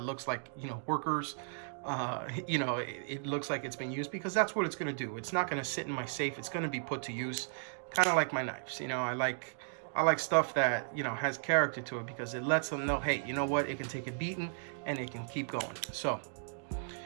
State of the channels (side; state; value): left; silent; digital silence